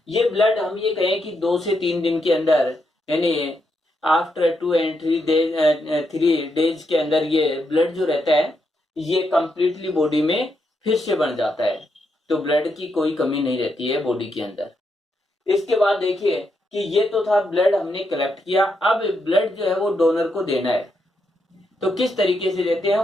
ये ब्लड हम ये कहें कि 2 से 3 दिन के अंदर, यानी आफ्टर 2 and 3 डेज के अंदर ये ब्लड जो रहता है ये कंप्लीटली बॉडी में फिर से बन जाता है। तो ब्लड की कोई कमी नहीं रहती है बॉडी के अंदर। इसके बाद देखिए कि ये तो था ब्लड हमने कलेक्ट किया, अब ब्लड जो है वो डोनर को देना है। तो किस तरीके से देते हैं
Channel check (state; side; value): normal; both; correlation 0.81